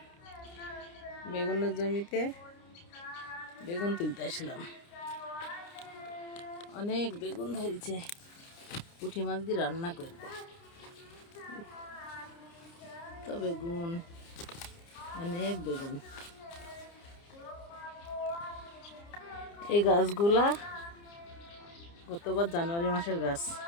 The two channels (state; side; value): late; right; 29 ms